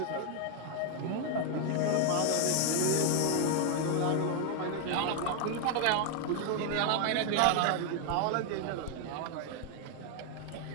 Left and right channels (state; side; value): different; both; correlation 0.01